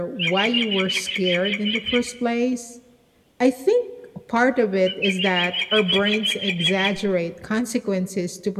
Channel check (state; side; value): identical; both; correlation 1.00